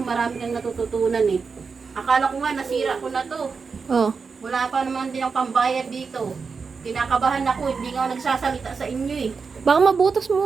kang natututunan eh. Akala ko nga nasira ko na to. Oh. Wala pa naman din ang pambayad dito. Kinakabahan ako, hindi nga ako nagsasalita sa inyo eh. Baka mabutas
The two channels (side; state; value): left; quieter; 5.1 dB